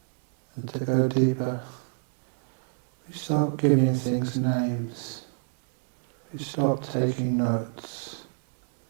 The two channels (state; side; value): silent; left; digital silence